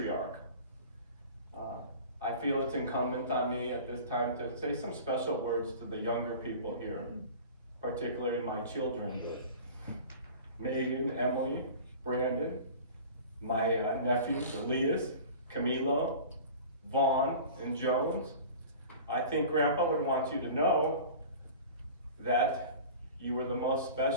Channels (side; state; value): both; inverted; correlation -0.40